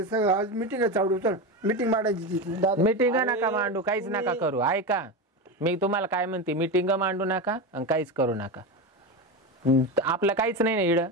सगळं आज मिटिंग चावडू चल मिटिंग मांडायची तिथे दादा. मीटिंग नका मांडू, काहीच नका करू. ऐका मी तुम्हाला काय म्हणते, मीटिंग मांडू नका आणि काहीच करू नका. आपलं काहीच नाही ना इड,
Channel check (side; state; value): both; normal; correlation 0.19